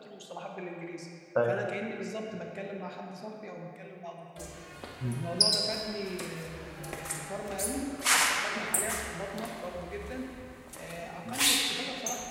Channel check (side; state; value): both; identical; correlation 1.00